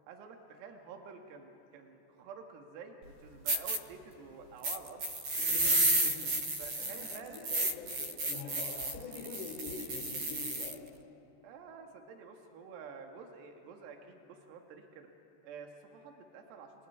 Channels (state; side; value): late; left; 14 ms